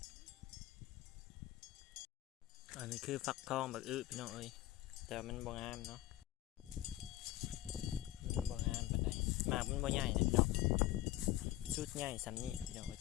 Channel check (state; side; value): quieter; right; 15.0 dB